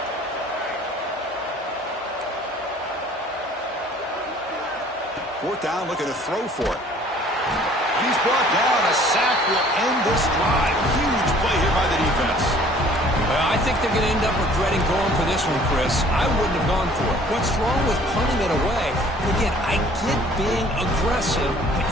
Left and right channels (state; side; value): normal; both; correlation 0.54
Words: Fourth down, looking to throw for it. He's brought down. A sack will end this drive. Huge play here by the defense. Well, I think they're going to end up regretting going for this one, Chris. I wouldn't have gone for it. What's wrong with punting it away? And again, I get being aggressive, but